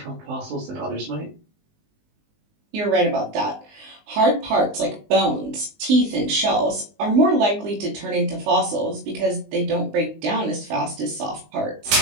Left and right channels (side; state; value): left; late; 19 ms